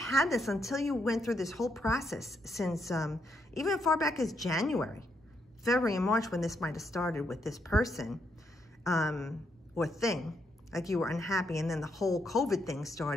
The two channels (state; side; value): normal; both; correlation 0.77